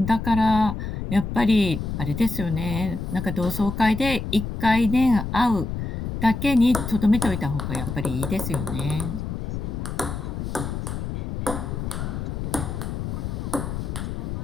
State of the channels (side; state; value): left; noise; rumble, 4 dB below the sound